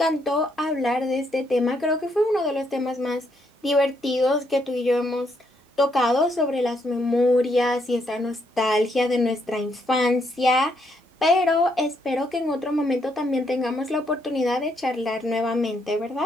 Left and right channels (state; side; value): normal; both; correlation 0.74